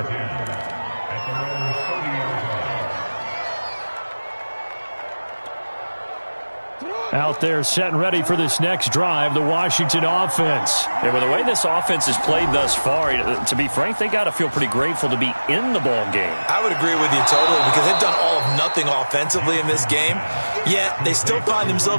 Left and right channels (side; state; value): both; inverted; correlation -1.00